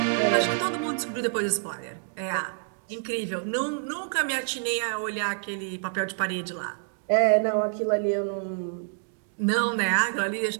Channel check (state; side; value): silent; left; digital silence